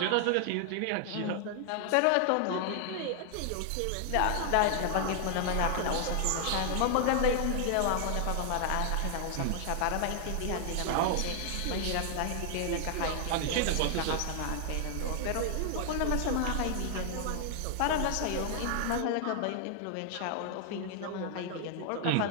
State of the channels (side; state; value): both; different; correlation 0.00